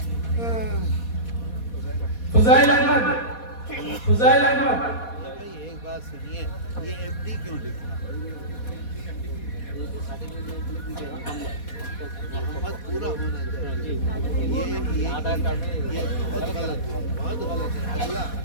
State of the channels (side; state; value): right; late; 4.2 ms